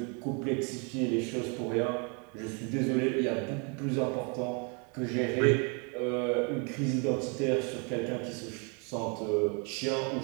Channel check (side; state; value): left; quieter; 35.1 dB